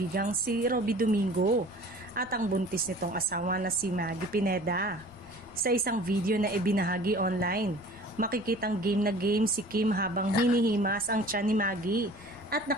si Robby Domingo at ang buntis nitong asawa na si Maggie Pineda. Sa isang video na ibinahagi online, makikitang game na game si Kim habang hinihimas ang tiyan ni Maggie at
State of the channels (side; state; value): left; noise; rumble, 22 dB below the sound